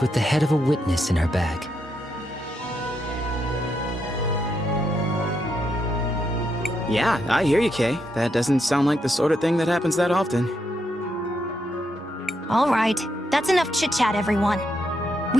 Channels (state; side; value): normal; both; correlation 0.80